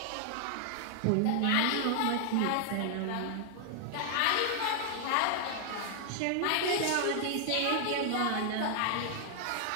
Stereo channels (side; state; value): both; different; correlation 0.00